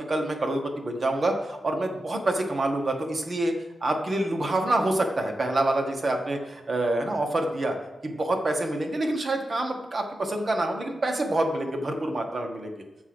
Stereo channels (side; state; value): both; normal; correlation 0.90